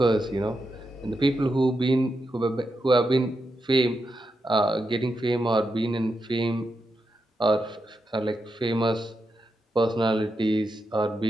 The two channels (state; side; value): normal; both; correlation 0.86